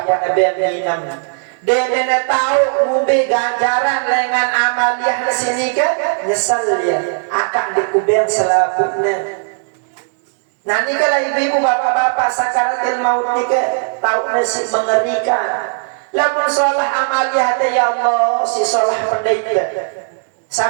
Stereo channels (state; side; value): silent; left; digital silence